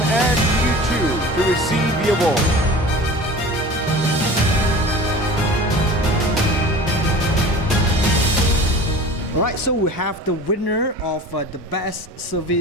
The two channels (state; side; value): normal; both; correlation 0.39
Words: Ann Yu Chu to receive the award. Alright, so we have the winner of the Best